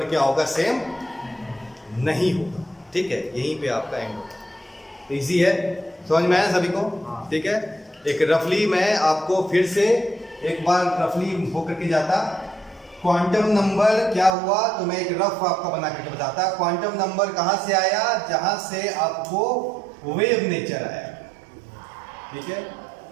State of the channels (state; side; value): drops out; left; at 14.3 s